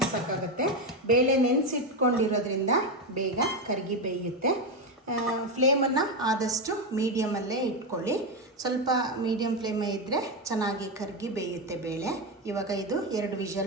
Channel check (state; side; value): normal; both; correlation 0.10